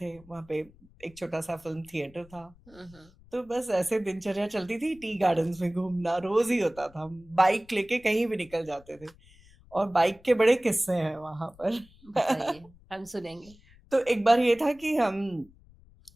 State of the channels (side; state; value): left; noise; rumble, 26 dB below the sound